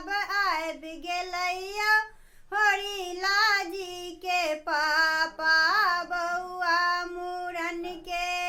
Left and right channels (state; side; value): identical; both; correlation 1.00